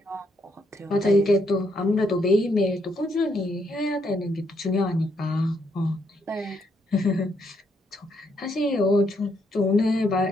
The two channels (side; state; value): both; normal; correlation 0.75